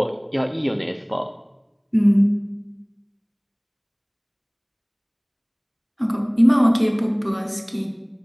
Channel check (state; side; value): identical; both; correlation 1.00